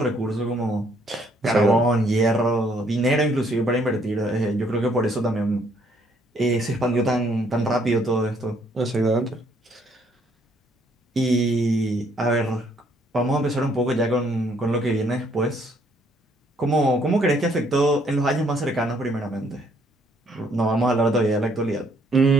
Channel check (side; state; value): both; normal; correlation 0.67